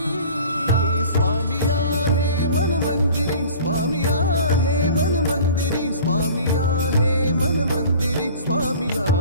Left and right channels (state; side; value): inverted; both; correlation -0.44